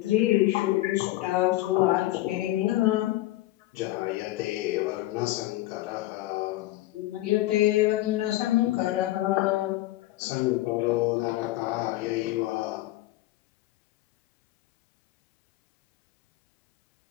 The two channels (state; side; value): quieter; right; 17.0 dB